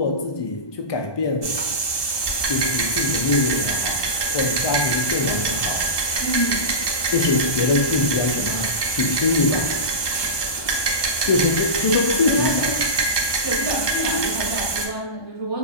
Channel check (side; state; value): right; late; 1.2 ms